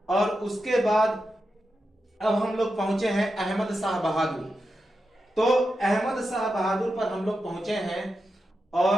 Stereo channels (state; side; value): normal; both; correlation 0.89